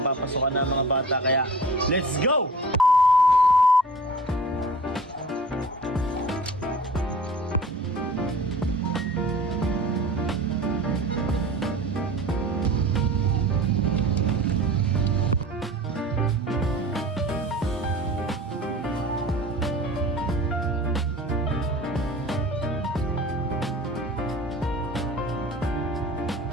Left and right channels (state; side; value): normal; both; correlation 0.41